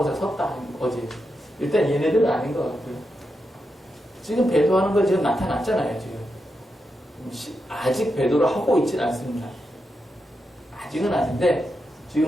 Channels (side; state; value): both; normal; correlation 0.86